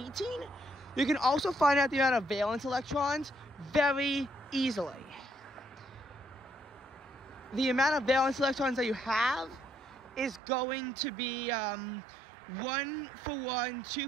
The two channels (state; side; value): drops out; left; at 10.4 s